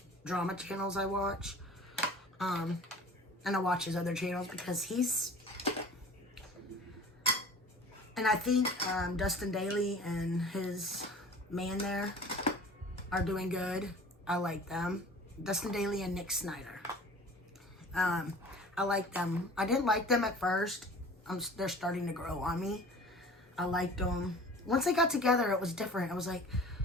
drama channels I watch. And I watch his other channels because he's, and I think Dustin Daly and his man there are doing good. I like them. Dustin Daly and Nick Snyder. I like them. I didn't like them at first. They're starting to grow on me. I liked them. Once they got together, it was different. It was like,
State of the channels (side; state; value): both; normal; correlation 0.44